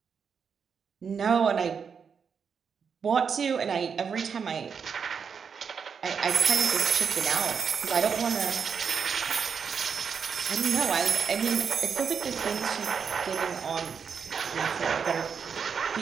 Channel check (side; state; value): left; quieter; 6.4 dB